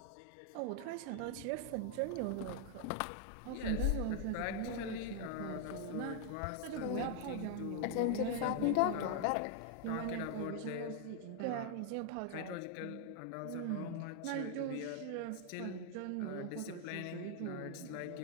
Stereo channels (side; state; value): both; different; correlation 0.00